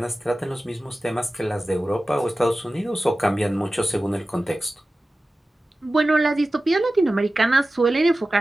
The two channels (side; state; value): both; normal; correlation 0.95